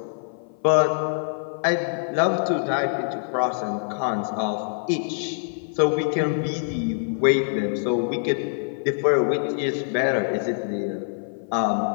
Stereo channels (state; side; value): silent; right; 56 dB below the other